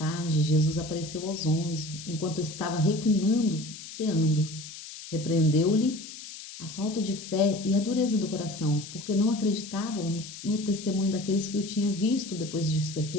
Jesus apareceu aos 11, enquanto estava reclinando, ceando. Repreendeu-lhe a falta de fé e a dureza do coração, porque não acreditavam no testemunho daqueles que o tinham visto depois de ser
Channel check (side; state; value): left; noise; hiss, 13 dB below the sound